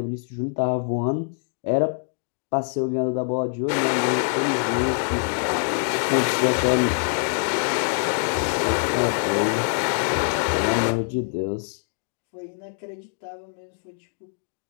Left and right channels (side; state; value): right; silent; digital silence